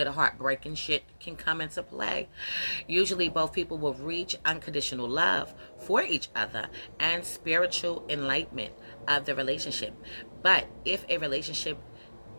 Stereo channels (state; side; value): inverted; both; correlation -1.00